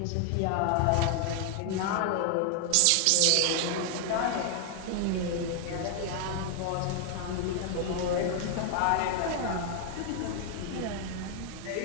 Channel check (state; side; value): different; both; correlation 0.00